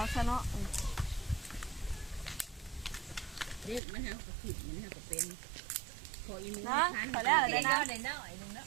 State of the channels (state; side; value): drops out; left; at 3.8 s